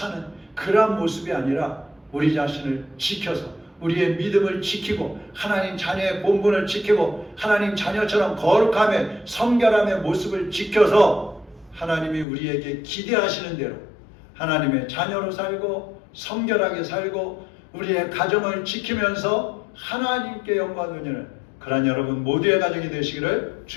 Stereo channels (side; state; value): right; drops out; at 12.2 s